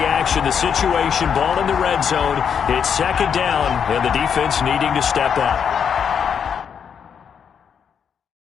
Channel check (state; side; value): quieter; right; 7.4 dB